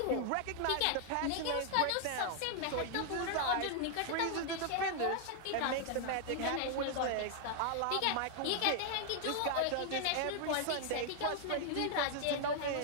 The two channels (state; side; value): different; both; correlation 0.00